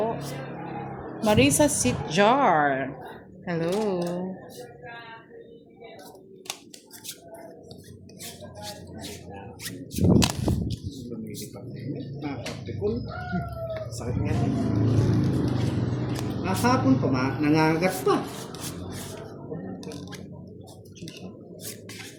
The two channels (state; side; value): identical; both; correlation 1.00